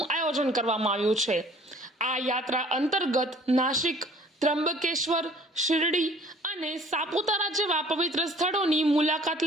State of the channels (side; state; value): both; normal; correlation 0.53